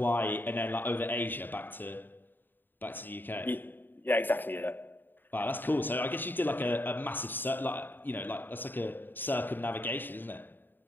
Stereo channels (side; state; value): right; late; 0.093 ms